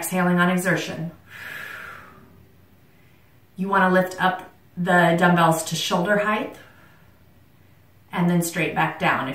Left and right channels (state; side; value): identical; both; correlation 1.00